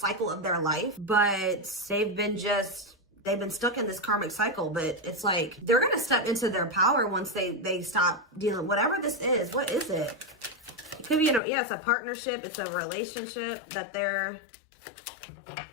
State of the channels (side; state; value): right; drops out; at 11.4 s